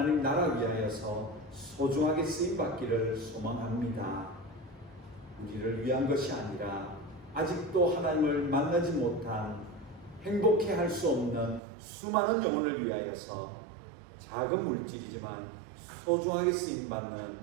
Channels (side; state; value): left; drops out; at 11.6 s